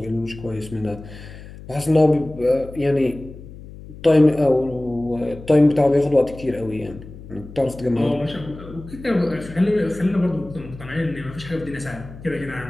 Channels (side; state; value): left; noise; hum, 16 dB below the sound